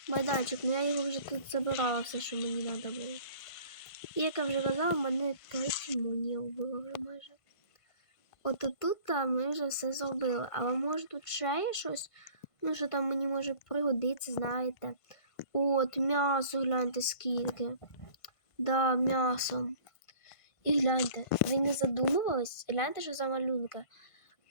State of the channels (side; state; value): right; late; 1.5 ms